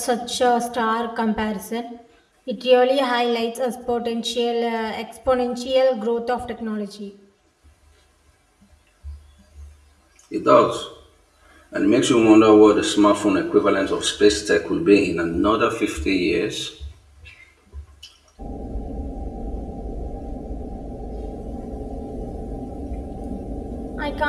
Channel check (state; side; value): identical; both; correlation 1.00